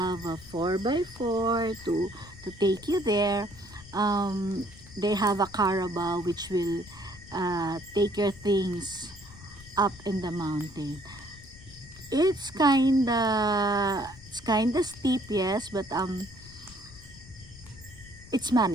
a 4x4 to take you there, they have a carabao which will take your things up in the mountain. It's kinda steep, yes, but it's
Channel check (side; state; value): left; noise; rumble, 19 dB below the sound